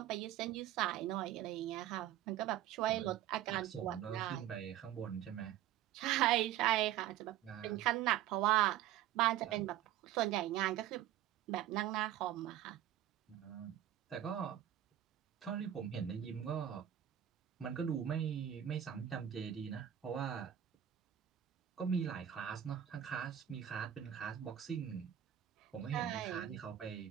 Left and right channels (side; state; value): left; quieter; 11.6 dB